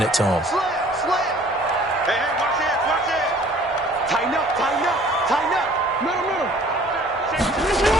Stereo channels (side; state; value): both; normal; correlation 0.53